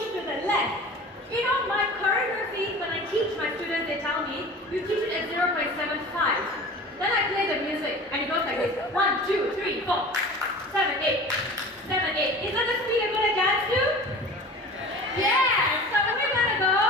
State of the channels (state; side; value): normal; both; correlation 0.39